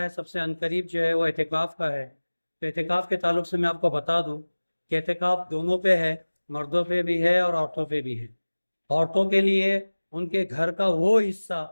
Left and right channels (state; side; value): inverted; both; correlation -1.00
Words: ہے سب سے عنقریب جو ہے وہ اعتکاف کا ہے۔ تو اعتکاف کے تعلق سے میں آپ کو بتا دوں کہ اعتکاف دونوں پہ ہے، مردوں پہ بھی ہے اور عورتوں پہ بھی ہے۔ عورتوں کے لیے ان کے گھر کا وہ حصہ